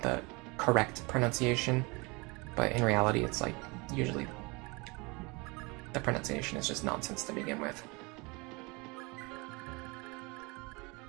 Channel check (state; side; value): quieter; left; 27.1 dB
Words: the correct pronunciation, but in reality, it's like usually the pronunciation is just nonsense to begin with.